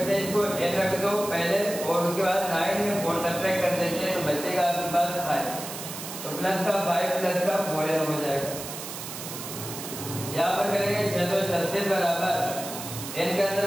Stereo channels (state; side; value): noise; right; hiss, 9 dB below the sound